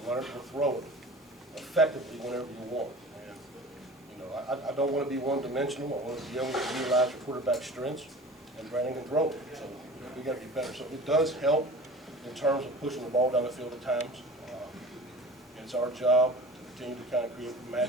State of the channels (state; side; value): normal; both; correlation 0.39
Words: learn to throw it effectively whenever you want. And you know, I don't want to be one-dimensional. I want to be able to utilize your quarterback's strengths, and Brandon can throw it. So we got to be better. So it does help in terms of pushing the ball down the field at times. It's our job to continue to kind of create